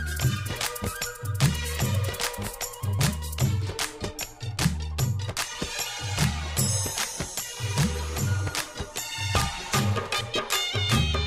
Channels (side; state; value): both; identical; correlation 1.00